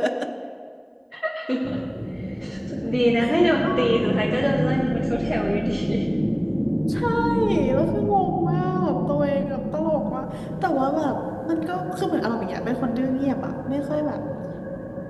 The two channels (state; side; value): identical; both; correlation 1.00